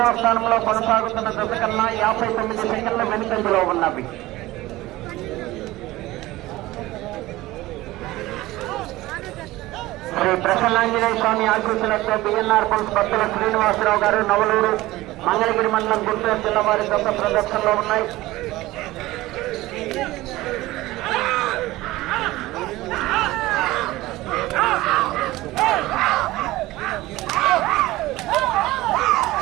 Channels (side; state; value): left; quieter; 18.1 dB